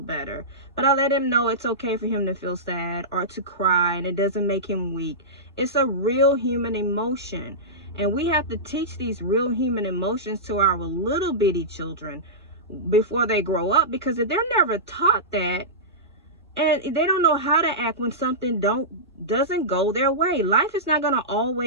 better. But I let him know it's okay for him to feel sad or to cry, and it doesn't make him weak. It's a real human emotion. And we have to teach these real human emotions to our little bitty children before they grow up, because if they're never taught that, and they don't know how to act when something doesn't go their way. Life is not going to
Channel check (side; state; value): both; normal; correlation -0.16